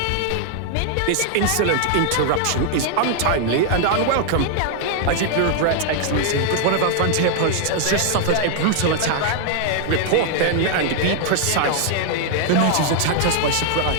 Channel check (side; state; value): both; different; correlation 0.00